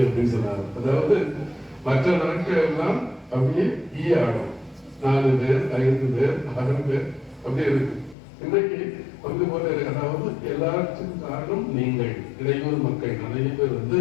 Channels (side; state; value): right; drops out; at 8.2 s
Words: அப்படின்னு சொன்னாரு. அதாவது மற்ற நாட்கள் எல்லாம் அப்படியே ஆடும், 4 பேர் 5 பேர் 6 பேர் அப்படியே இருக்கு. இன்றைக்கு பங்கு போல இருக்கு. அதாவது எல்லாருக்கும் காரணம் நீங்கள் இளையோர் மக்கள் நிறைய